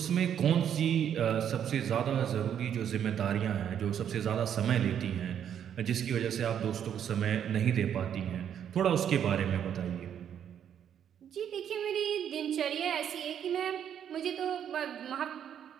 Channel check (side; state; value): left; quieter; 9.1 dB